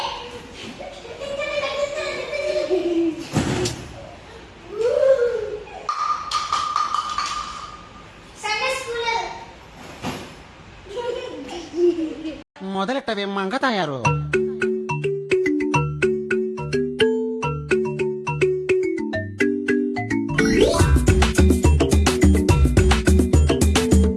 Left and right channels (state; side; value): identical; both; correlation 1.00